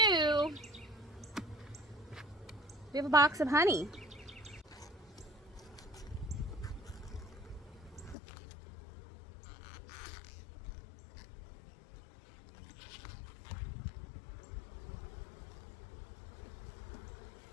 we have a box of honey.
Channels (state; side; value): drops out; right; at 8.2 s